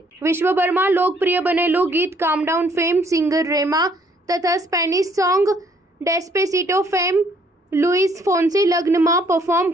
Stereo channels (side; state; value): both; normal; correlation 0.64